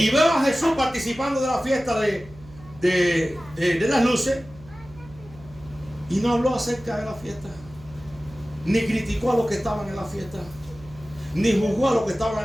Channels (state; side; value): noise; right; hum, 21 dB below the sound